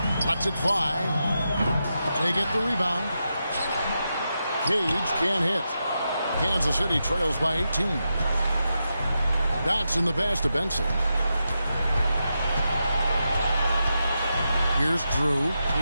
Lets it fly. They get the rebound. Cage can't hit. Kansas City trails by 18. Dotson the pass to Benson. Here's Drew.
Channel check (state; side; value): inverted; both; correlation -0.87